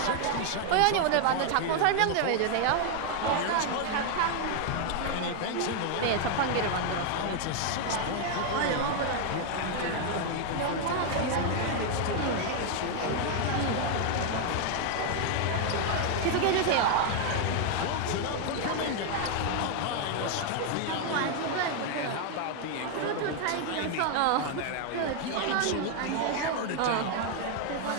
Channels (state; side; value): different; both; correlation 0.00